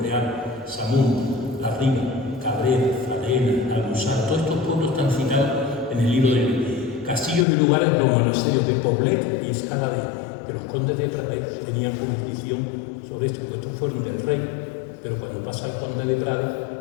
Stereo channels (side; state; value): right; drops out; at 7.5 s